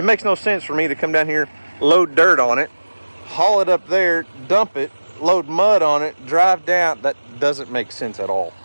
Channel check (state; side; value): inverted; both; correlation -1.00